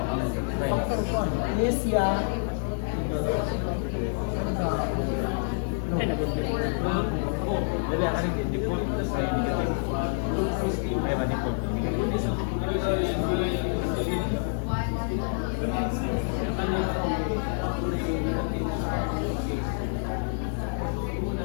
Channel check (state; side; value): silent; right; digital silence